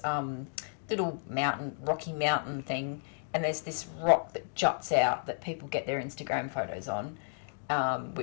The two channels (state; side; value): silent; right; digital silence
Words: little rocky mountain thing, and there's this rock that juts out that people get their Instagram photos on,